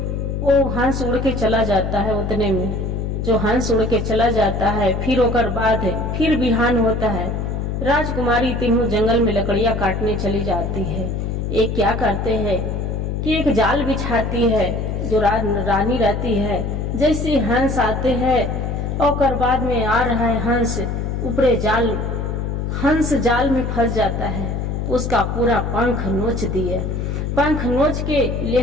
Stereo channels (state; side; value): noise; left; hum, 2 dB below the sound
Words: वो हंस उड़ के चला जाता है, उतने में जो हंस उड़ के चला जाता है। फिर ओकर बाद है फिर बिहान होता है, राजकुमारी तीनों जंगल में लकड़ियां काटने चली जाती है। एक क्या करते हैं कि एक जाल बिछाती है जो रानी रहती है। जैसे हंस आते हैं और बाद में आ रहा है हंस, ऊपरे जाल, हंस जाल में फंस जाता है, उसका पूरा पंख नोच दिए, पंख नोच के